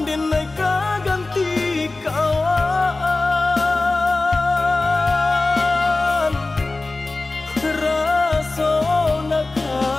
denai ganti kawan, rasa nak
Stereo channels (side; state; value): right; quieter; 3.3 dB